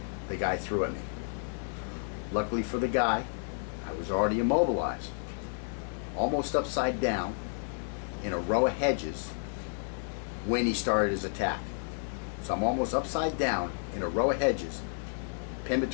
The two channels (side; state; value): right; silent; digital silence